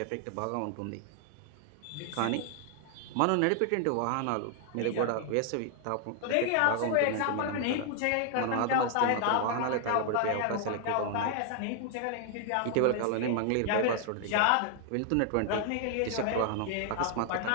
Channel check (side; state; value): both; different; correlation 0.00